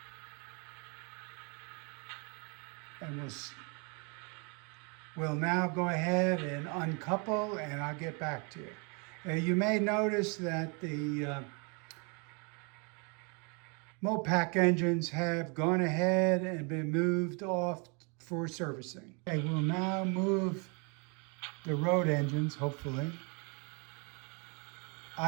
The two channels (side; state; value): left; quieter; 34.0 dB